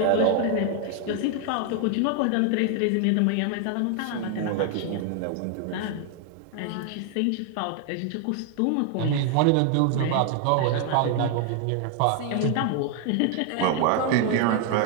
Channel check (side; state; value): both; different; correlation 0.00